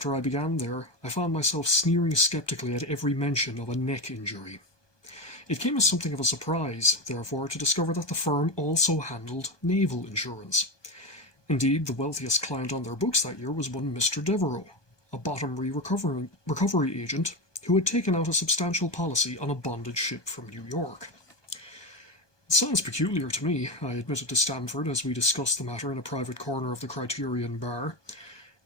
I began there, I found myself sneering skeptically at every mention of a neck injury. It came as something of a surprise, therefore, to discover that the firm also handled naval insurance. Indeed, the wealthiest client on their books that year was one Mr. Devereux, a bottomry recovery agent who had taken out a substantial policy on a bonded ship from New York. It sounds peculiar to me, I admitted to Stamford as we discussed the matter in a private corner of the Criterion bar.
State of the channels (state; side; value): late; right; 1.2 ms